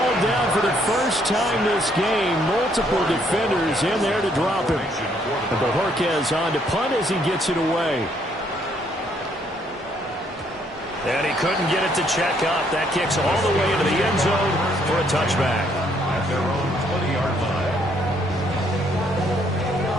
down for the first time this game. Multiple defenders in there to drop him. And Bojorquez on to punt as he gets it away. And he couldn't get it to check up. That kicks all the way into the end zone for a touchback. At their own 20-yard line.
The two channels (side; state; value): both; normal; correlation 0.69